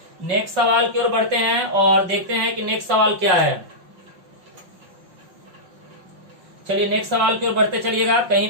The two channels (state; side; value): late; left; 5.6 ms